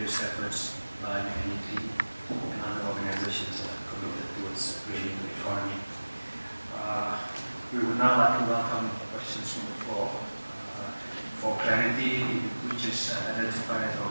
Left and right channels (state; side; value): inverted; both; correlation -1.00